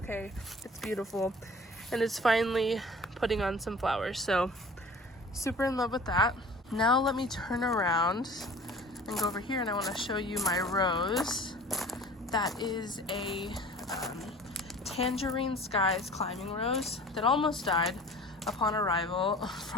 It's beautiful. And it's finally putting on some flowers. So super in love with that. Now let me turn around and go over here, and I want to show you my rose. That is a Tangerine Skies climbing rose that almost died upon arrival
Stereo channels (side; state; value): both; normal; correlation 0.44